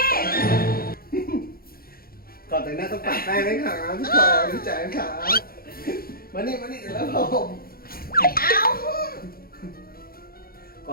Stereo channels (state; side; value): late; right; 0.43 ms